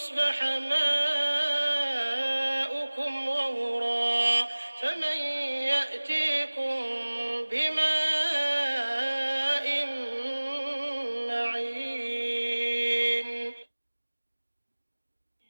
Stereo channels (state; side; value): inverted; both; correlation -1.00